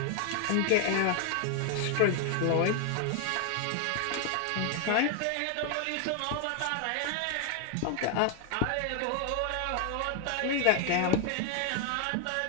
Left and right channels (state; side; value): different; both; correlation 0.00